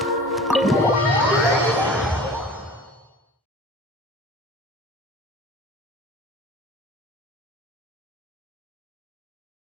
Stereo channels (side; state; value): both; normal; correlation 0.41